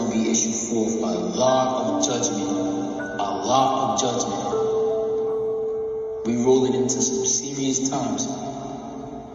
to be issued forth. A lot of judgment. A lot of judgment. We're rolling into some serious times.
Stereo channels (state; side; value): identical; both; correlation 1.00